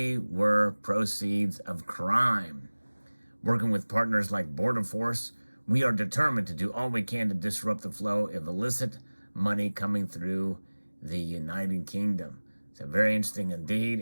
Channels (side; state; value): both; inverted; correlation -1.00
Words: were proceeds of crime. Working with partners like Border Force, we are determined to do all we can to disrupt the flow of illicit money coming through the United Kingdom. So very interesting indeed,